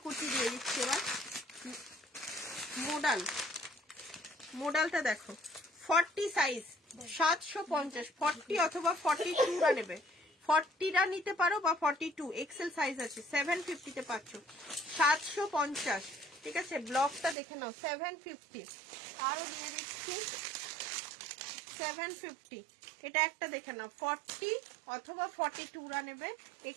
কুর্তি দিয়ে দিচ্ছি এবার। মোডালটা দেখো, 40 সাইজ 750, 40 অথবা 42রা নেবে, 40রা নিতে পারো বা 42 এক্সেল সাইজ আছে, 750 তে পাচ্ছ, 750, ঠিক আছে? ব্লকটা দেখে নাও, 750। আরো দিয়ে দিচ্ছি 750। এটা একটা দেখে নাও, 40 অথবা 42রা নেবে,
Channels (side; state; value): left; drops out; at 17.4 s